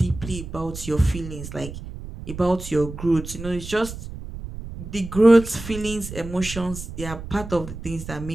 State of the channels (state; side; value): noise; right; rumble, 11 dB below the sound